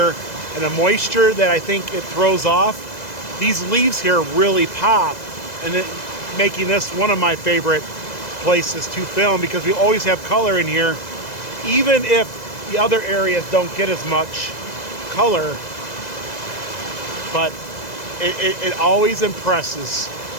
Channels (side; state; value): right; late; 2.0 ms